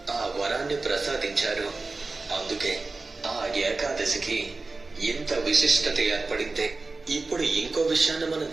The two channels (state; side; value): quieter; left; 3.6 dB